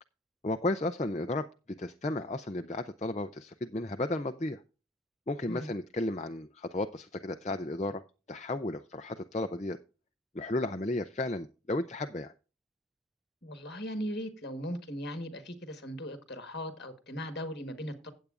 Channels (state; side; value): normal; both; correlation 0.53